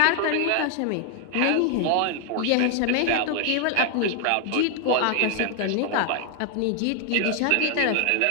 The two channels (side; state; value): both; different; correlation 0.00